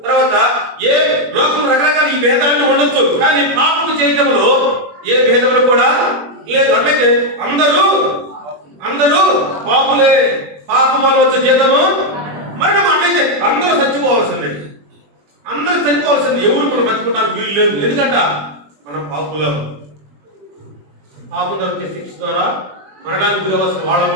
తర్వాత ఏ లోకం రకరకాల ఈ భేదాలను ఉండొచ్చు, కానీ పాపము చేయటంలో ఏ భేదములు కూడా లేదు. అంటే అందరూ పాపులే, పాపం వల్ల వచ్చే జీతము మరణం. అంటే అందరూ చచ్చిపోవాల్సిందే, అందరూ చనిపోవాల్సింది. ఎవరు మనం బతుకుంటారు వీలు లేదు. ఎందుకంటే మనం పాపులం. పాపం వచ్చే శిక్ష ద్వారా మరణానికి గురవలసిన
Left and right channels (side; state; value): left; late; 21 ms